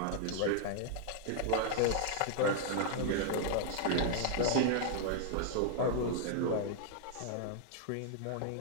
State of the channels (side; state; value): both; different; correlation -0.01